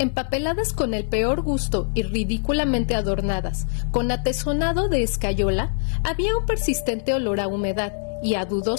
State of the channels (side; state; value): right; silent; digital silence